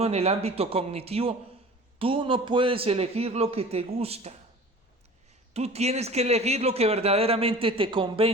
en el ámbito cognitivo, tú no puedes elegir lo que te gusta. Tú tienes que elegir lo que verdaderamente te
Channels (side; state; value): both; normal; correlation 0.42